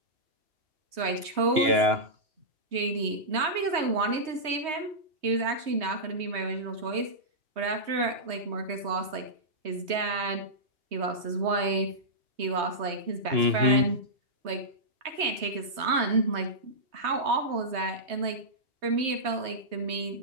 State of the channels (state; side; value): late; left; 3.2 ms